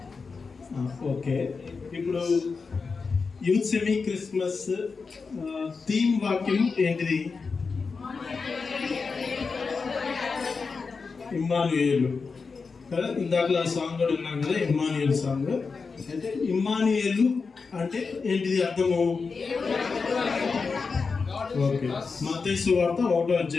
ఓకే, ఇప్పుడు యూత్ సెమీ క్రిస్మస్ థీమ్ వాక్యం ఏంటిది? ఇమ్మానుయేలు కదా. ఇందాక సాంగ్ కూడా ఉన్నాం కదా, ఇమ్మానుయేలు సాంగ్. అయితే ఇమ్మానుయేలు అంటే ఏంటిది అర్థము? ఓకే, మత్తయి సువార్త 1వ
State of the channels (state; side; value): quieter; right; 4.8 dB